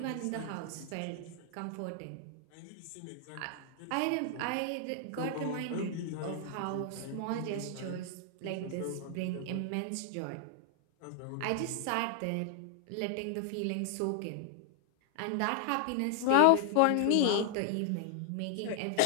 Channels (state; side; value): different; both; correlation 0.00